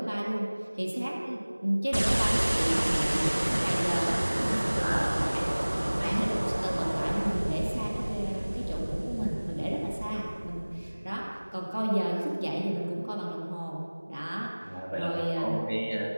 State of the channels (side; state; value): both; inverted; correlation -1.00